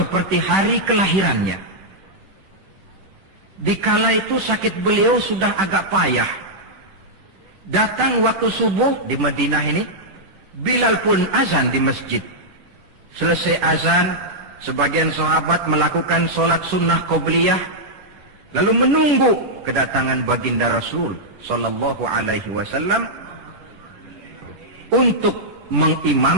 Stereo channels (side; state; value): left; late; 10 ms